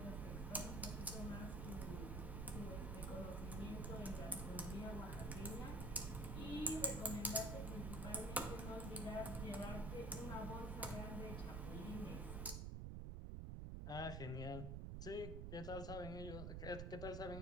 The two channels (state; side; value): noise; right; rumble, 2 dB below the sound